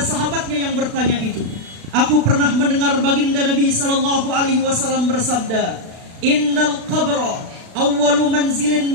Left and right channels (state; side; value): late; left; 36 ms